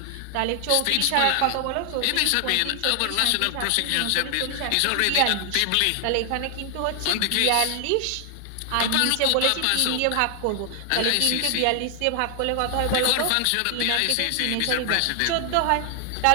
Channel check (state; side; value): different; both; correlation 0.00